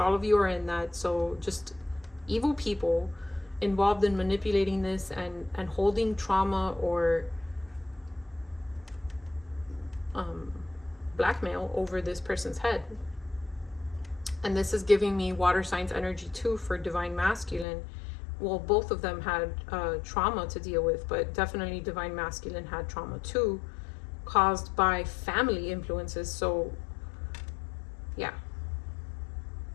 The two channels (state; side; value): drops out; right; at 17.7 s